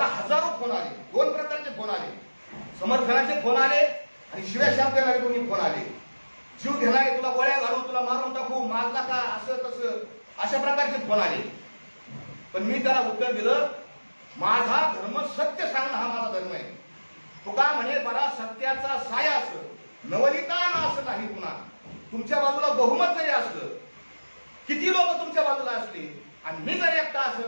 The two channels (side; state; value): both; inverted; correlation -1.00